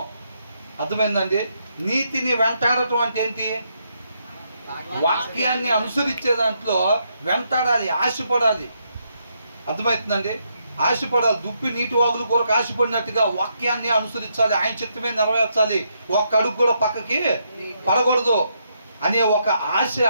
అర్థమైందండి? నీతిని వెంటాడటం అంటే ఏంటి? వాక్యాన్ని అనుసరించే దాంట్లో వెంటాడాలి, ఆశపడాలి. అర్థమవుతుందండి? ఆశపడాలి. దుప్పి నీటి వాగులు కొరకు ఆశపడినట్టుగా వాక్యాన్ని అనుసరించాలి, ఆయన చిత్తమే నెరవేర్చాలి. ఒక్క అడుగు కూడా పక్కకి పడకూడదు. అనే ఒక ఆశ,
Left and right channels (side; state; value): both; inverted; correlation -0.78